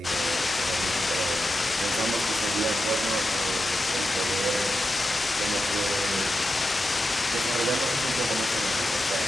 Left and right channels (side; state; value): both; normal; correlation 0.90